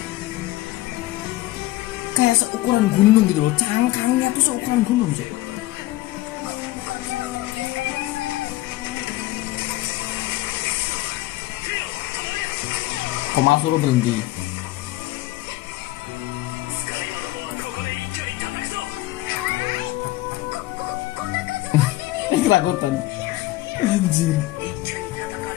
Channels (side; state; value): right; quieter; 17.5 dB